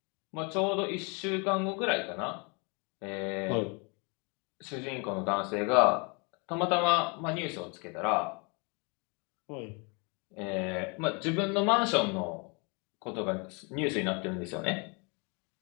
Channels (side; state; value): right; quieter; 32.3 dB